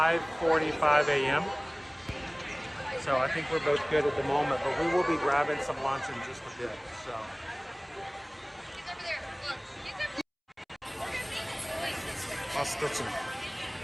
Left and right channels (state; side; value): identical; both; correlation 1.00